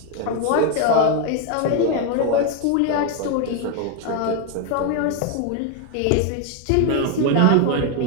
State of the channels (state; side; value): different; both; correlation 0.01